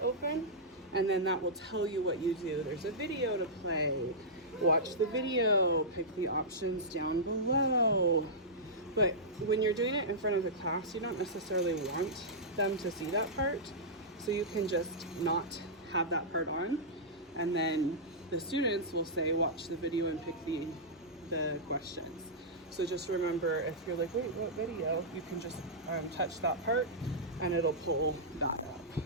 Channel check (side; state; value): both; normal; correlation -0.13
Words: and then that will tell you what you do. There's a video to play. Watch the video, pick the options down below. But when you're doing it in front of the class, you don't necessarily want them to see that part. So you can just not have that part on. And then the students will say, watch the video and pick the questions. So just remember, if you're like, wait, what video? You can just touch that part and it'll pull that up.